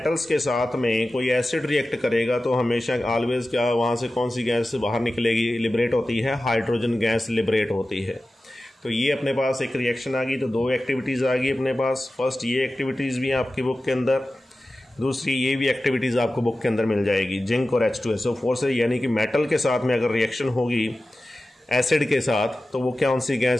के साथ में कोई एसिड रिएक्ट करेगा तो हमेशा ऑलवेज क्या वहाँ से कौन सी गैस बाहर निकलेगी, लिबरेट होती है, हाइड्रोजन गैस लिबरेट होती है। तो ये अपने पास एक रिएक्शन आ गई, तो दो एक्टिविटीज़ आ गई अपने पास। फर्स्ट ये एक्टिविटीज़ भी हैं आपकी बुक के अंदर, दूसरी ये भी एक्टिविटीज़ आपको बुक के अंदर मिल जाएगी जिंक और H2SO4 से। यानी कि मेटल के साथ में अगर रिएक्शन होगी एसिड के साथ तो वो कौन सी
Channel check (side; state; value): both; normal; correlation 0.95